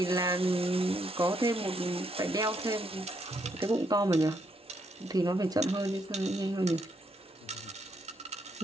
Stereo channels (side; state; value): both; normal; correlation 0.75